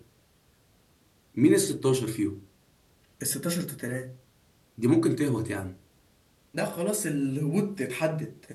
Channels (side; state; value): both; identical; correlation 1.00